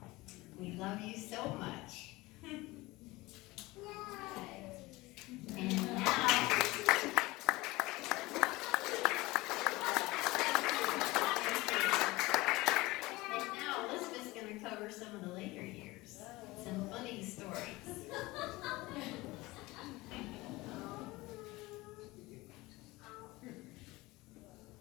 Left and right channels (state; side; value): quieter; right; 20.9 dB